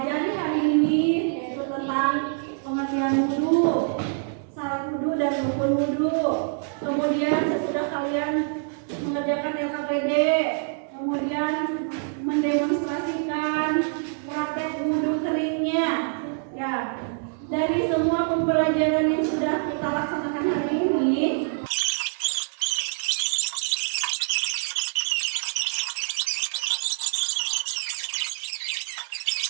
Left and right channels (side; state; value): left; silent; digital silence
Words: hari ini, yaitu tentang pengertian wudu, syarat wudu dan rukun wudu. Kemudian sesudah kalian mengerjakan LKPD, kemudian mendemonstrasikan praktek wudu keringnya. Ya, dari semua pembelajaran yang sudah kita laksanakan hari ini,